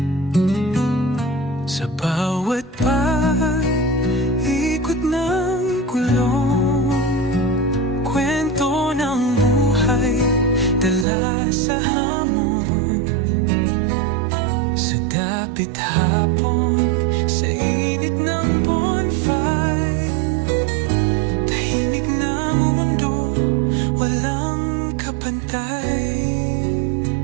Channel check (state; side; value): drops out; left; at 11.1 s